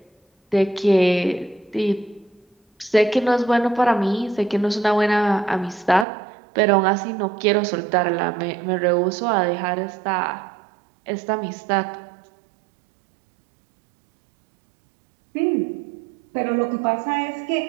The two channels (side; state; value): left; drops out; at 6.1 s